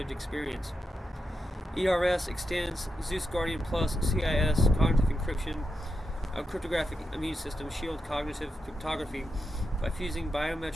experience. ERS extends Zeus Guardian Plus CIS cognitive encryption, a cryptographic immune system shield cognitive cryptography by fusing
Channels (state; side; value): normal; both; correlation 0.87